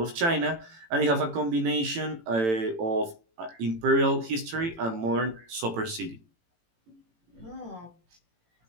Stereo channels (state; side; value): late; left; 18 ms